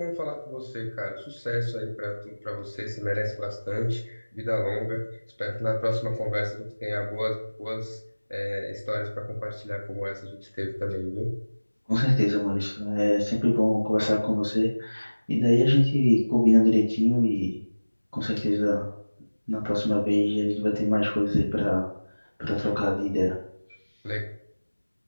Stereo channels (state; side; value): inverted; both; correlation -1.00